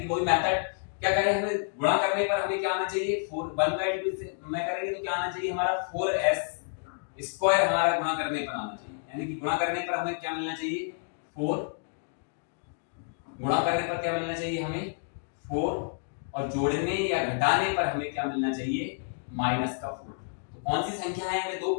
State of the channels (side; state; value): right; silent; digital silence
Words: कि वही मेथड। क्या करें, हमें गुणा करने पर हमें क्या आना चाहिए, 4 1 बाई 2 से मैं करेंगे तो क्या आना चाहिए हमारा 4s स्क्वायर, हमारा गुणा करने पर आना चाहिए, यानी कि गुणा करने पर हमें क्या मिलना चाहिए 4, गुणा करने पर क्या मिलना चाहिए हमें 4, और जोड़ने या घटाने पर हमें क्या मिलना चाहिए माइनस का 4। तो कौन सी संख्या है हमें दो,